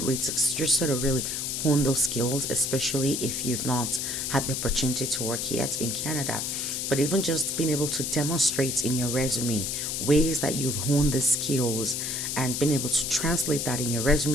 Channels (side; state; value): left; noise; hiss, 2 dB below the sound